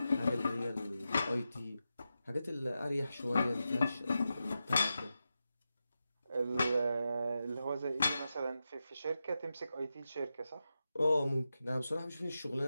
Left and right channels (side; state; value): both; inverted; correlation -0.90